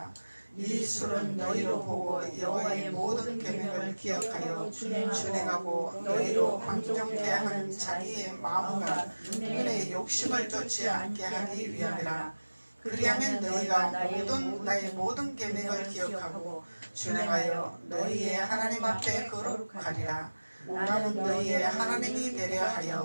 이 술은 너희로 보고 여호와의 모든 계명을 기억하여 준행하고 너희로 방종케 하는 자기의 마음과 눈의 욕심을 쫓지 않게 하기 위함이라. 그리하면 너희가 나의 모든 계명을 기억하고 준행하여 너희의 하나님 앞에 거룩하리라. 나는 너희의 하나님이 되려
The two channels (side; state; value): both; inverted; correlation -1.00